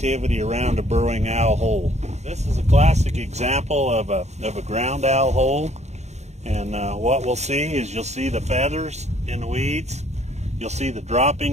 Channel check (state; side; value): late; left; 0.32 ms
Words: around a burrowing owl hole. This is a classic example of a ground owl hole, and what we'll see is you'll see the feathers in the weeds. you'll see the